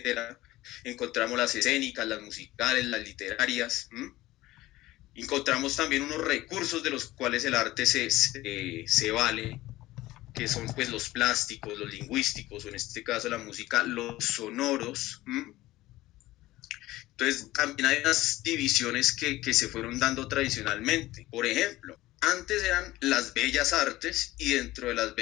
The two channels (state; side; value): quieter; right; 17.2 dB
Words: Encontramos las escénicas, las musicales, las literarias. Encontramos también unos recursos de los cuales el arte se vale, que son pues los plásticos, los lingüísticos, o en este caso la música, los sonoros. Entonces, también hay unas divisiones que se fueron dando tradicionalmente. Por ejemplo, antes eran las bellas artes y dentro de las